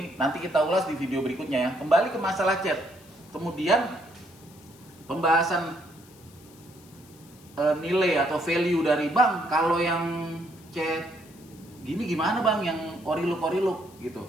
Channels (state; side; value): noise; left; hiss, 25 dB below the sound